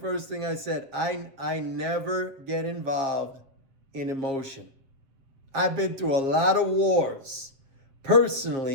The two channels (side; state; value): left; late; 7.4 ms